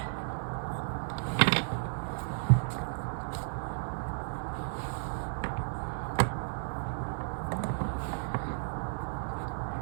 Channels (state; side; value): silent; left; 56 dB below the other